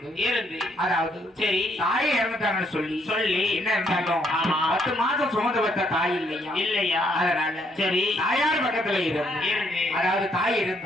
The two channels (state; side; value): normal; both; correlation 0.71